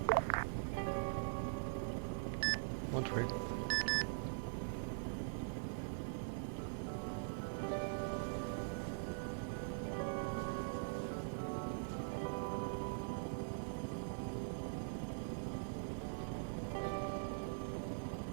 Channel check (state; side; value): silent; left; digital silence